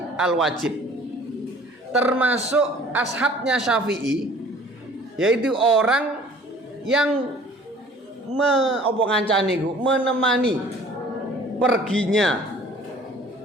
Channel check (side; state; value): both; normal; correlation 0.51